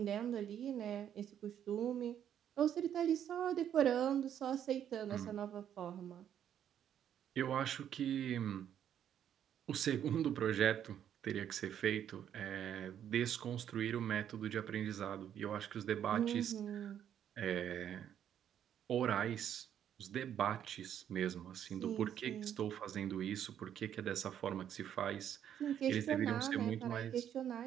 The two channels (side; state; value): left; quieter; 9.7 dB